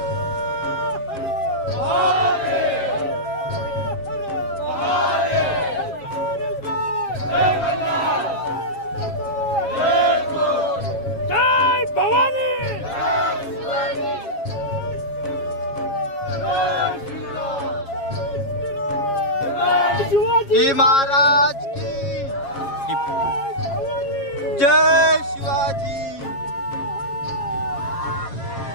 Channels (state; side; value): late; right; 7.4 ms